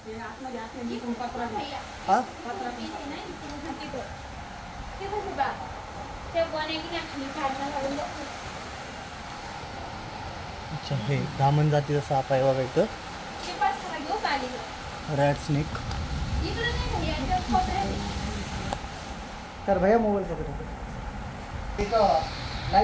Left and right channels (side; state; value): both; identical; correlation 1.00